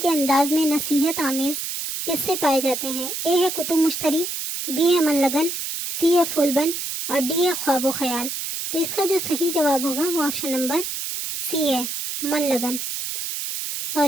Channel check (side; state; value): right; noise; hiss, 5 dB below the sound